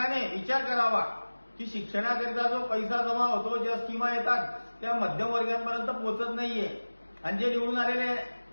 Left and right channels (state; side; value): inverted; both; correlation -1.00